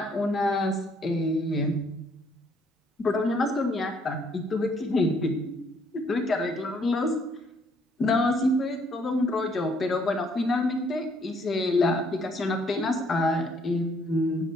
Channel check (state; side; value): normal; both; correlation 0.66